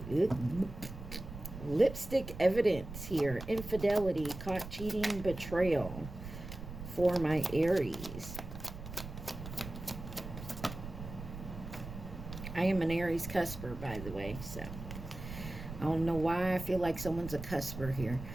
lipstick evidence here. Infidelity, caught cheating, betrayal for my Aries. I am an Aries cusper, by the way, so I don't know why I feel like someone's a cusper here.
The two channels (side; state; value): right; noise; rumble, 10 dB below the sound